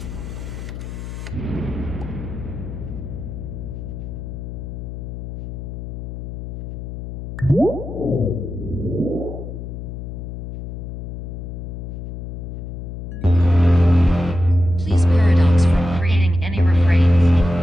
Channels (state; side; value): noise; left; hum, 8 dB below the sound